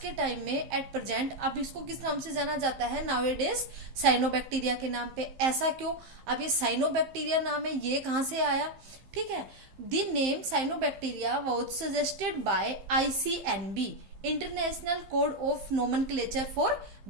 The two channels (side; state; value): left; late; 15 ms